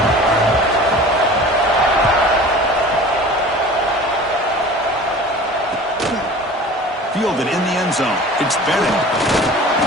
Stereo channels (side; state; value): both; normal; correlation 0.41